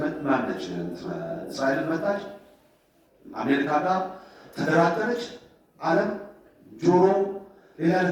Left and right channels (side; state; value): both; identical; correlation 1.00